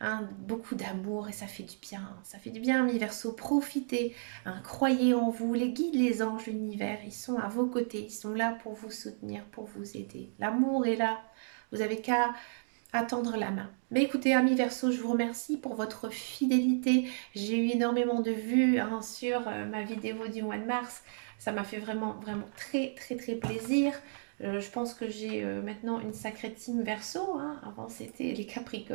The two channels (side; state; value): left; silent; digital silence